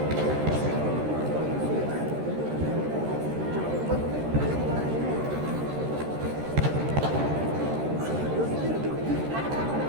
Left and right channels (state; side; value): late; left; 13 ms